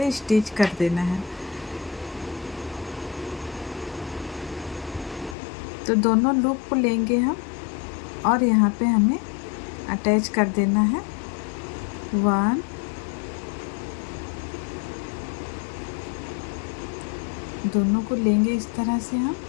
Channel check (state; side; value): drops out; right; at 5.4 s